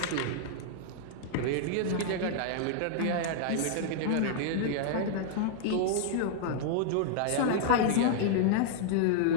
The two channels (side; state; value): both; different; correlation -0.01